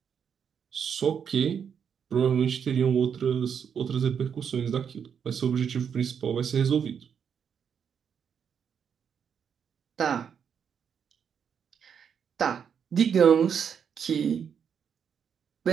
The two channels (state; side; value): quieter; left; 7.5 dB